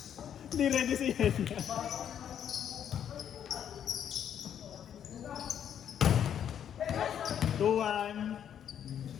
Hindi ready si Yenya. 2-1.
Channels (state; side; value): quieter; right; 9.2 dB